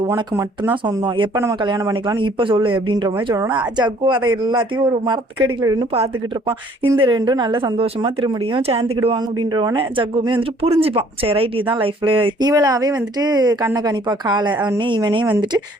உனக்கு மட்டும்தான் சொந்தம், எப்ப நம்ம கல்யாணம் பண்ணிக்கலாம்னு இப்ப சொல்லு அப்படின்ற மாதிரி சொல்லணும்னா ஜக்கு அதை எல்லாத்தையும் ஒரு மரத்துக்கடியில இருந்து பார்த்துக்கிட்டு இருப்பான். இந்த ரெண்டும் நல்ல சந்தோஷமா திரும்பியும் சேர்ந்துக்கிடுவாங்க. அப்படின்றவன ஜக்குமே வந்துட்டு புரிஞ்சுப்பான். சரி ரைட், இதுதான் லைஃப்ல. இவளாவே வந்துட்டு கண்ணை கணிப்பா காலை. அவனே இவனே வந்துட்டு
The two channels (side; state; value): both; normal; correlation 0.59